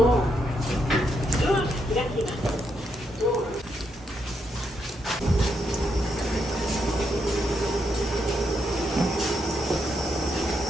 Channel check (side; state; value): both; normal; correlation 0.80